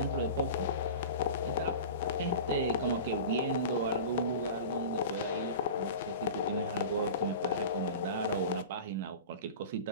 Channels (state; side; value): inverted; both; correlation -0.33